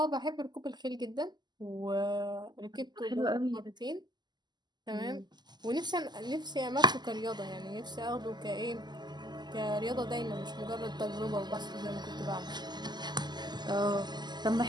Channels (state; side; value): late; left; 0.21 ms